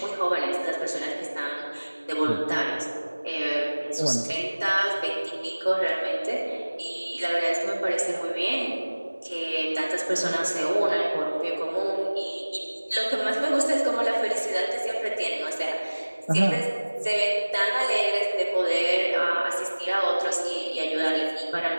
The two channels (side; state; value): both; inverted; correlation -1.00